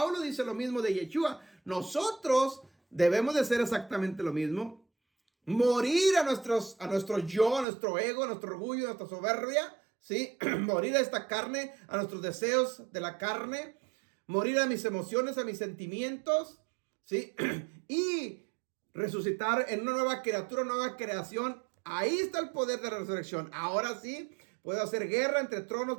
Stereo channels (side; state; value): left; drops out; at 7.7 s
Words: dice lo mismo de Yeshua. Nosotros debemos de hacer exactamente lo mismo. Morir a nuestro yo, a nuestro ego, a nuestro orgullo, a nuestra soberbia, ¿sí? Morir a esta carne, a nuestros deseos de la carne. Morir a mis emociones, a mis sentimientos, ¿sí? Y resucitar en una nueva criatura, una nueva creación. Ahí está el poder de la resurrección. Ahora sí, puedo hacer guerra entre tronos,